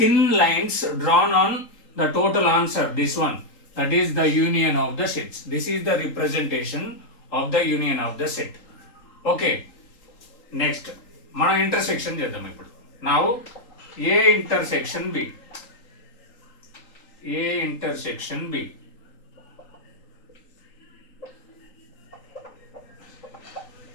lines drawn on the total answer. This one, that is the union of the sets. This is the representation of the union of the set. Okay. Next మనం intersection చేద్దాం ఇప్పుడు. Now A intersection B. A intersection B.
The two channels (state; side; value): late; right; 3.8 ms